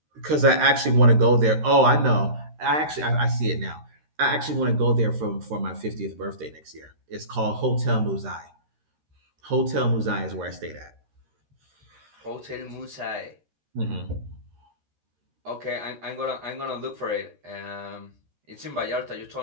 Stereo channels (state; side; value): late; left; 13 ms